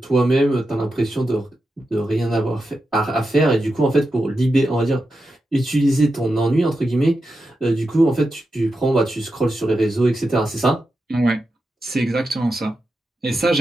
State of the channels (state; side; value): normal; both; correlation 0.89